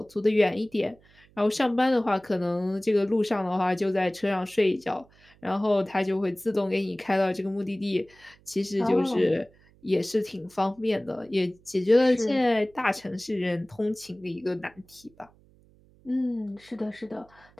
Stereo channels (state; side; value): noise; right; hum, 29 dB below the sound